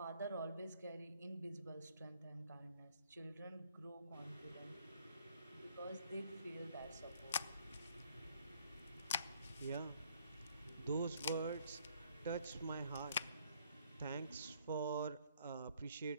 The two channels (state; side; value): inverted; both; correlation -0.65